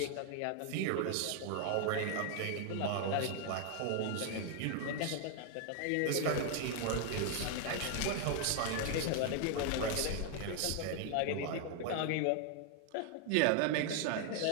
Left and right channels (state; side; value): different; both; correlation 0.00